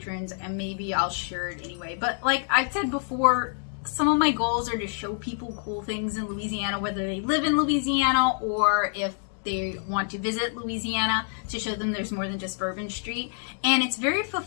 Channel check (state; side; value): silent; right; 59 dB below the other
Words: and maybe I'll share it anyway. But like I've said before, some of my goals are to show people cool things in Louisiana, whether they live in Louisiana or if they want to visit Louisiana to show them there's more than just Bourbon Street. And it's very